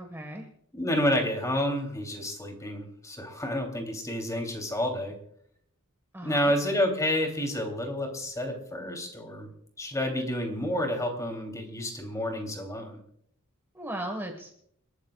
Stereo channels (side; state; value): both; normal; correlation 0.50